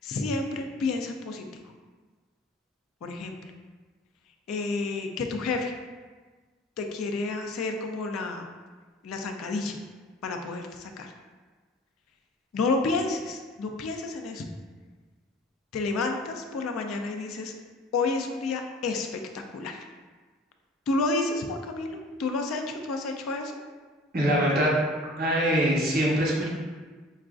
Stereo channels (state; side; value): normal; both; correlation 0.46